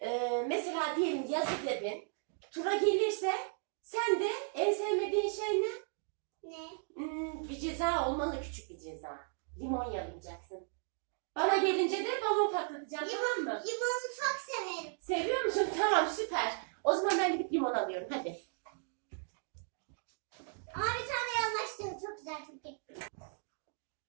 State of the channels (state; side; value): silent; left; 54 dB below the other